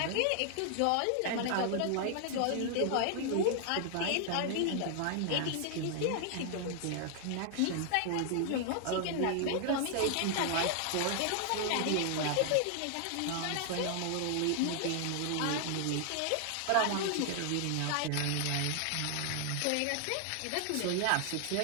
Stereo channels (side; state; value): both; different; correlation 0.00